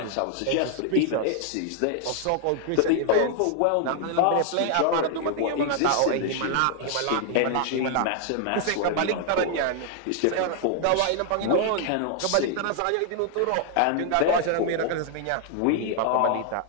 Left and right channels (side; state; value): both; different; correlation 0.00